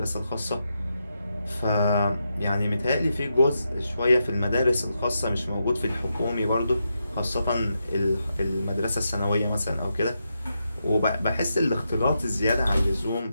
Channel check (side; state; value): both; inverted; correlation -0.85